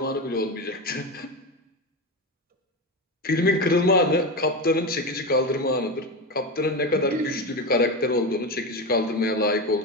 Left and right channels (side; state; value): both; normal; correlation 0.18